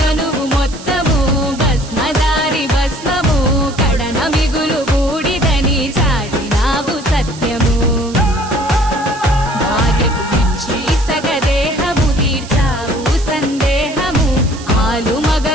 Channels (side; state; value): right; noise; hiss, 16 dB below the sound